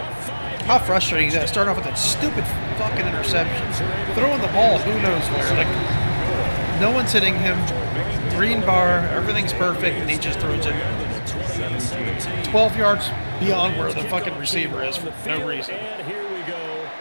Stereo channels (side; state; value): both; inverted; correlation -1.00